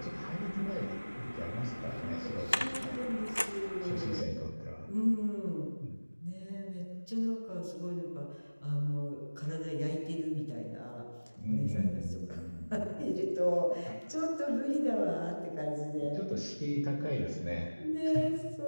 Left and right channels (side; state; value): both; inverted; correlation -1.00